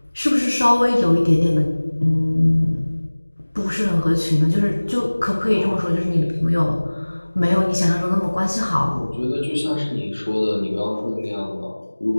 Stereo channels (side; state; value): both; inverted; correlation -1.00